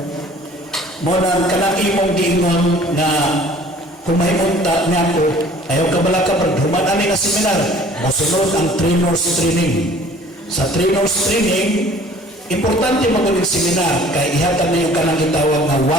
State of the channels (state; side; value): normal; both; correlation 0.51